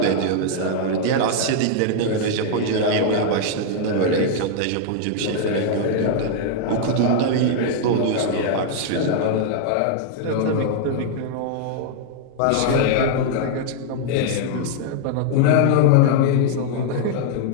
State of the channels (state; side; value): different; both; correlation -0.01